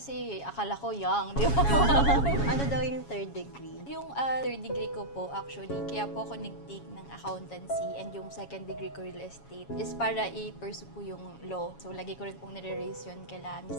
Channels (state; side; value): late; right; 7.2 ms